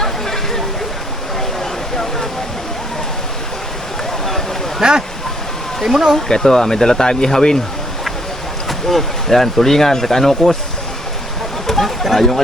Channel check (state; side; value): normal; both; correlation 0.68